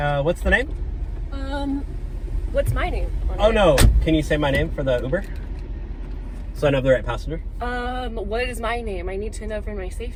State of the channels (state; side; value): identical; both; correlation 1.00